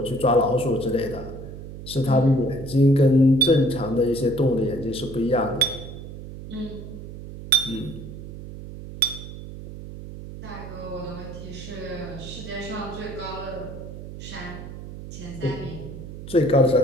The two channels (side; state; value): right; noise; hum, 12 dB below the sound